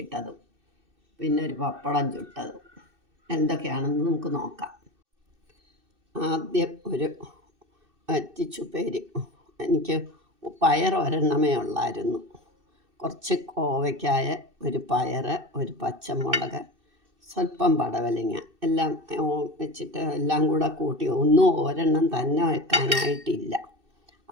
പിന്നെ ഒരു പപ്പടം ചുട്ടതും എന്തൊക്കെയാണെന്ന് നമുക്ക് നോക്കാം. ആദ്യം ഒരു വറ്റിച്ചുപ്പേരി. എനിക്ക് പയർ ഒരെണ്ണമേ ഉള്ളായിരുന്നു. കുറച്ച് കോവയ്ക്കായ, ഒരു പയർ, ഒരു പച്ചമുളക്, സ്വല്പം പടവലങ്ങ എല്ലാം വെച്ചിട്ട് എല്ലാം കൂടെ കൂട്ടി ഒരെണ്ണം തന്നെ വെക്കാനായിട്ടില്ല.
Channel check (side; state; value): left; late; 2.6 ms